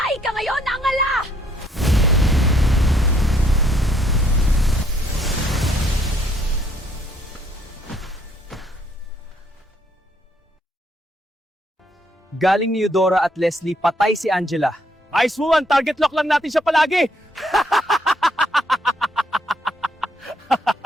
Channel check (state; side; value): normal; both; correlation 0.69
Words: ka ngayon, Angela! Galing ni Eudora at Leslie, patay si Angela. Ice Woman, target lock lang natin siya palagi!